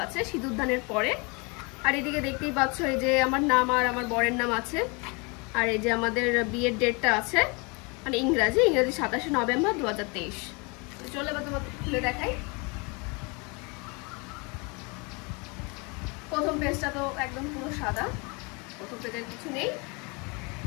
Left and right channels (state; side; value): quieter; right; 29.9 dB